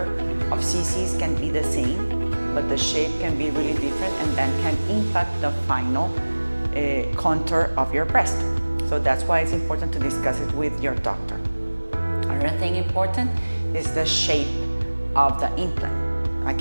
of cc's can be the same, but the shape can be really different and then can impact the final contour of your breast. So that's why it's important to discuss it with your doctor. Another thing important is the shape of the implant.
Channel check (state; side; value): inverted; both; correlation -1.00